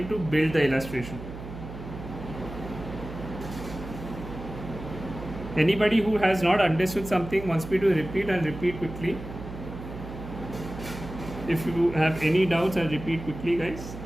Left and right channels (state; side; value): noise; right; hum, 11 dB below the sound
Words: to build the illustration. Anybody who has not understood something wants me to repeat, and repeat quickly. If you have any doubts, I'll repeat quickly, guys.